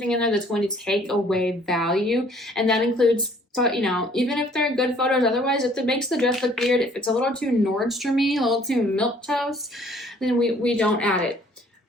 in there that's going to take away value. And that includes, even if they're good photos, otherwise, if it makes the dress look weird, if it's a little too Nordstrom-y, a little too milquetoast, then we don't add it.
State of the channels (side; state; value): both; normal; correlation 0.58